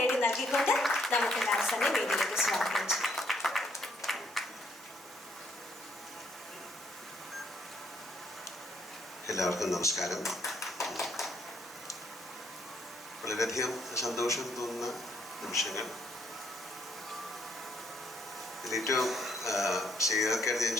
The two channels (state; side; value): normal; both; correlation 0.70